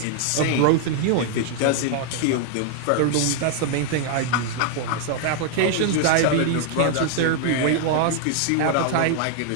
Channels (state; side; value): different; both; correlation 0.00